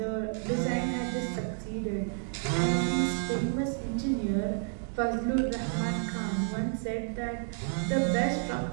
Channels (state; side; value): silent; left; 57 dB below the other